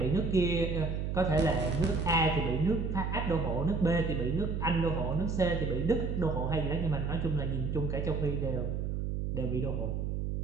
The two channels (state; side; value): noise; right; hum, 1 dB below the sound